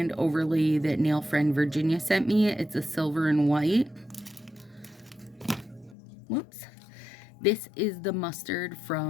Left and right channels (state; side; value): drops out; right; at 6.0 s